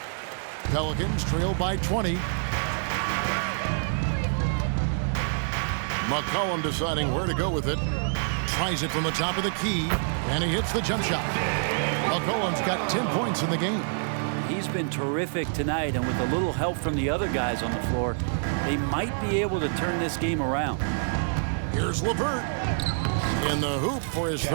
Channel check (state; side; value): silent; left; digital silence